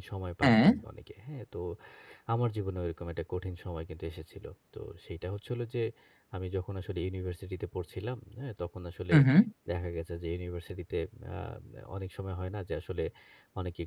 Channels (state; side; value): identical; both; correlation 1.00